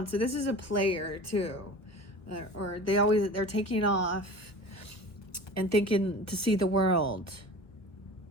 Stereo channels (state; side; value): late; right; 1.0 ms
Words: so this is a player too, or they're taking off and thinking to see the world.